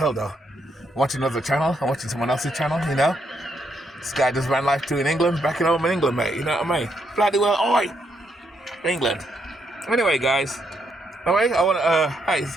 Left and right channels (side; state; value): both; normal; correlation 0.77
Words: though. I'm watching another channel. I'm watching someone else's channel, you know. This guy does van life too in England, back at home in England, mate. You know what I mean? Bloody well, oi! England. Anyway, guys. Anyway, I want